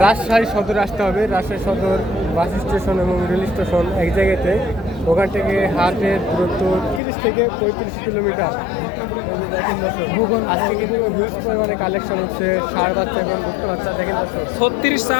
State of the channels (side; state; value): right; drops out; at 7.0 s